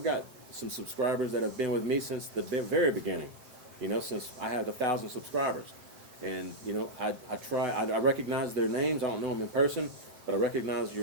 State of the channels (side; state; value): left; late; 7.9 ms